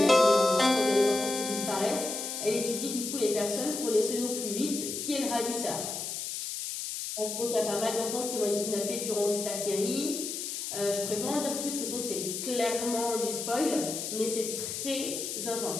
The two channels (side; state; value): left; noise; hiss, 5 dB below the sound